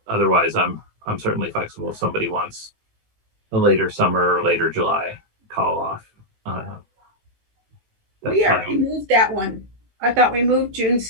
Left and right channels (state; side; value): late; left; 18 ms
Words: otherwise, I'm certainly flexible if somebody wants a later summer or later July call off. We already moved that one. I thought we moved June